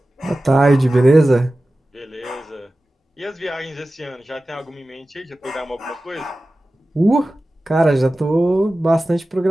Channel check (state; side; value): normal; both; correlation 0.95